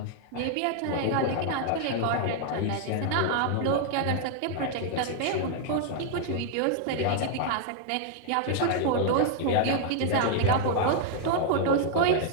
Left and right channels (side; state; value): both; different; correlation -0.01